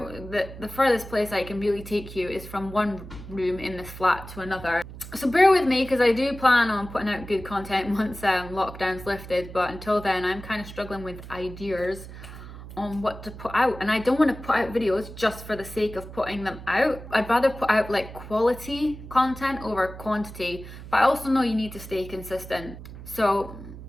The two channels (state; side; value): noise; right; hum, 13 dB below the sound